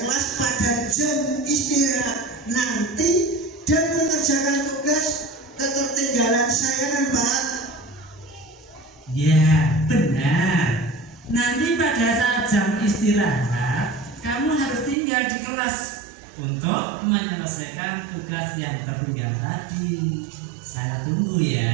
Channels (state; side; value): drops out; left; at 15.0 s